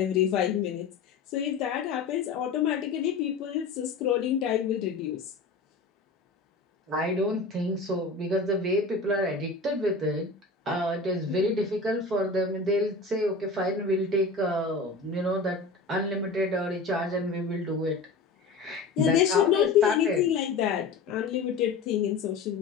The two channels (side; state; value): right; quieter; 4.0 dB